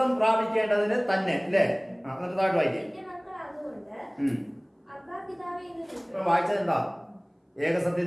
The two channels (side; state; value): both; identical; correlation 1.00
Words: പ്രാപിക്കേണ്ടതിന് തന്നെ അല്ലേ? എന്നിട്ട് താഴോട്ട് വായിക്കേ. വായിച്ചത് എന്താ?